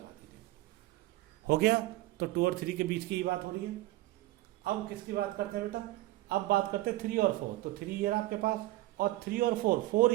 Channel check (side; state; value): left; quieter; 17.3 dB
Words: हो गया, तो 2 और 3 के बीच की ही बात हो रही है। अब किसकी बात करते हैं बेटा, अब बात करते हैं 3 और 4। तो 3 ये रहा आपके पास, और 3 और 4